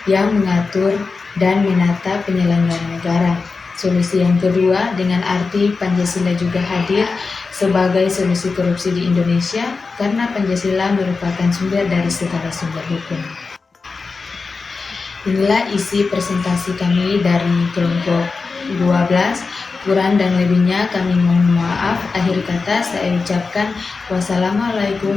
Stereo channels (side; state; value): right; quieter; 4.4 dB